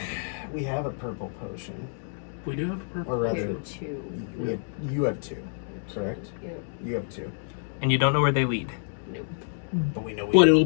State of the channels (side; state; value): right; silent; digital silence